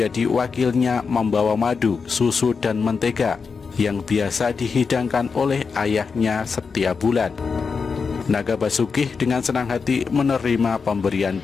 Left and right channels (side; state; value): right; quieter; 5.2 dB